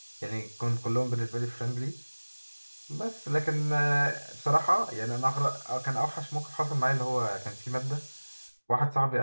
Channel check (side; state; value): both; inverted; correlation -1.00